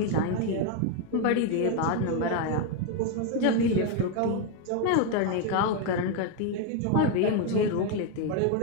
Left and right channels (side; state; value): both; different; correlation 0.02